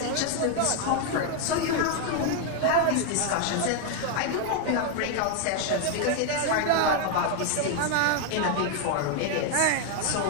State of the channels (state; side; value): different; both; correlation 0.01